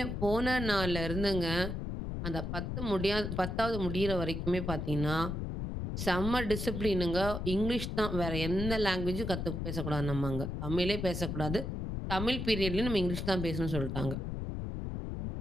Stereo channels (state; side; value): noise; left; rumble, 4 dB below the sound